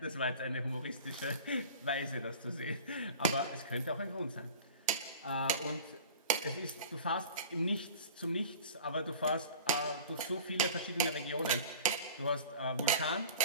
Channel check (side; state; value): both; inverted; correlation -0.40